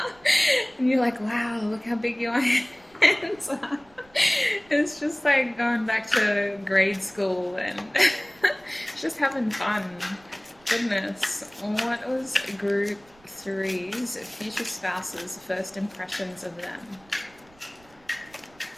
and you're like, wow, look how big your hands are. It's just like going back to grade school and just having fun. Goodness. What was group 3's future spouses' first impressions of them?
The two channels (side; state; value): right; noise; rumble, 29 dB below the sound